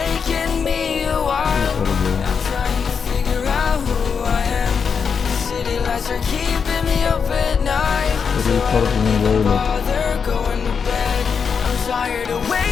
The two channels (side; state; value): right; quieter; 6.2 dB